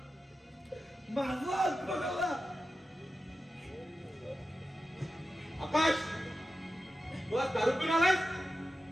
माझा हात बघायला. आकाश तू आज दारू पिऊन आलायस?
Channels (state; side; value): normal; both; correlation 0.92